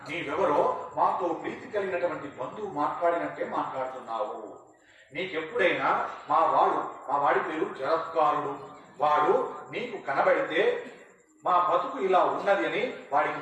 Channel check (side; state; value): both; identical; correlation 1.00